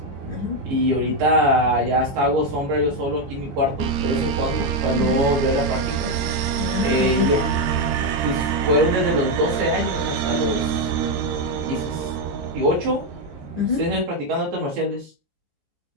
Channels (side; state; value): left; late; 14 ms